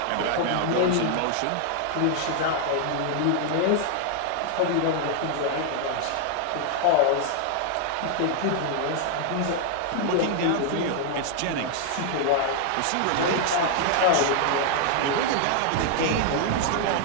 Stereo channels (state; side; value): different; both; correlation 0.00